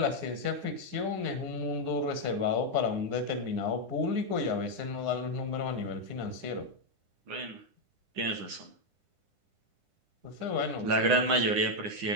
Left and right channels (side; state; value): left; late; 9.9 ms